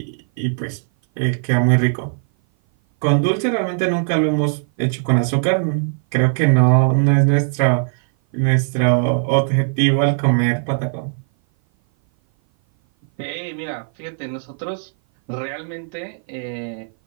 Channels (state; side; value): silent; left; 57 dB below the other